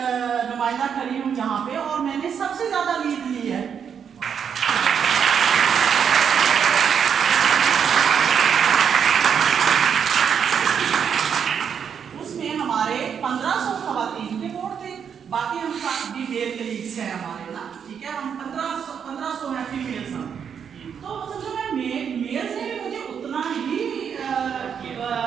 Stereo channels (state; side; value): quieter; left; 7.5 dB